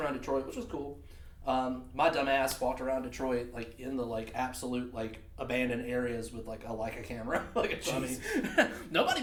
Detroit, which was cool. My dumb ass walked around Detroit like in the like absolute like abandoned areas with like a Leica camera. Like nobody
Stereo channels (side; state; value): both; identical; correlation 1.00